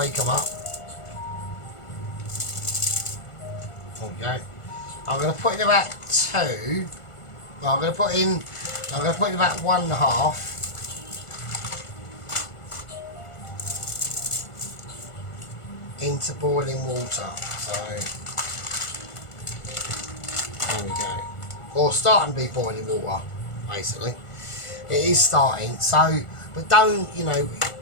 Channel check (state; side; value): late; right; 1.4 ms